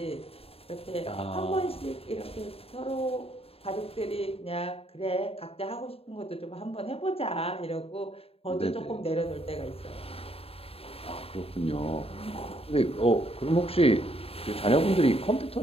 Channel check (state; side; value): late; right; 0.28 ms